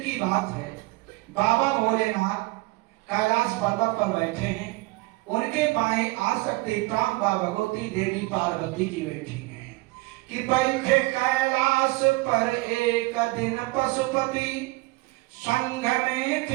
की बात है, बाबा भोलेनाथ कैलाश पर्वत पर बैठे हैं, उनके बाएं आसक्ति प्रांबा भगवती देवी पार्वती जी बैठी हैं कि बैठे कैलाश पर एक दिन पशुपति, संघ में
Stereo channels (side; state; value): left; quieter; 23.5 dB